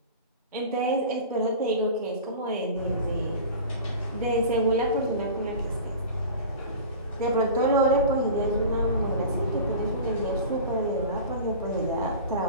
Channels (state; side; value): inverted; both; correlation -0.35